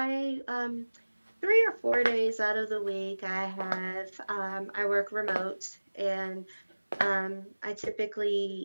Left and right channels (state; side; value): inverted; both; correlation -1.00